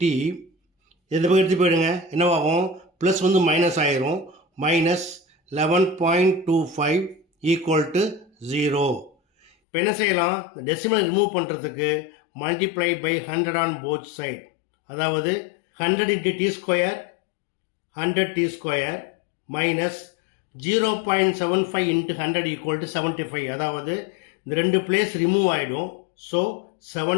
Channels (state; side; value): drops out; right; at 9.5 s